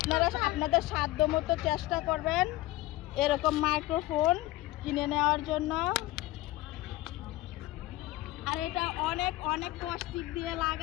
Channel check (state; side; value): quieter; right; 17.7 dB